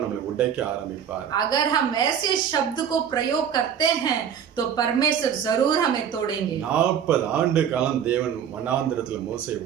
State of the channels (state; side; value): quieter; left; 8.4 dB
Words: நம்மளை உடைக்க ஆரம்பிப்பார். अगर हम ऐसे शब्द को प्रयोग करते हैं तो परमेश्वर जरूर हमें तोड़ेंगे। 40 ஆண்டு காலம் தேவன் வனாந்திரத்துல மோசேயை